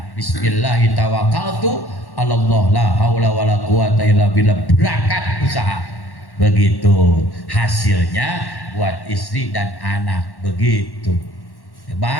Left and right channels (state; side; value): late; right; 1.1 ms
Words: Bismillahi tawakkaltu Allah, la haula wala quwata illa billah. Berangkat usaha. Begitu. Hasilnya buat istri dan anak. Begitu.